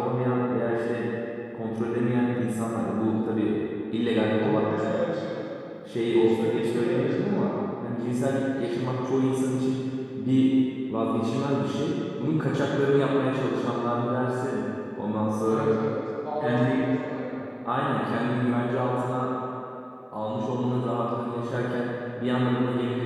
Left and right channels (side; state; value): both; identical; correlation 1.00